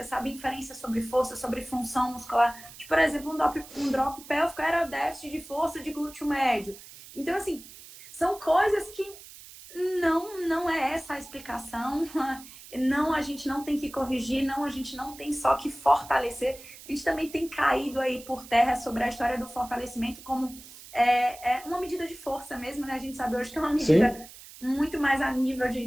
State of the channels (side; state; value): right; noise; hiss, 17 dB below the sound